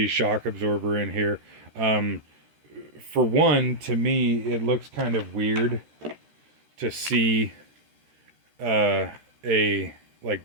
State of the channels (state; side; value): late; left; 13 ms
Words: shock absorber in here. Um, for one, to me, it looks kind of weird to see uh, a like